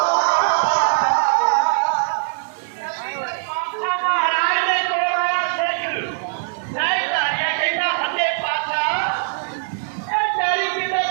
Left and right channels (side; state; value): left; silent; digital silence